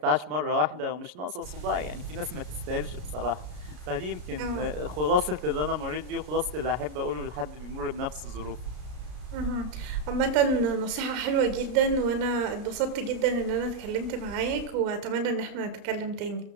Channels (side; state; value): left; late; 33 ms